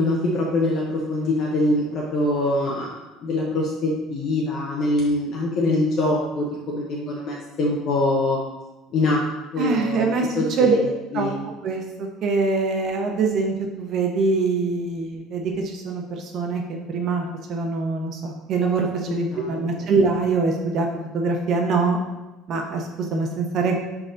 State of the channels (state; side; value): normal; both; correlation 0.46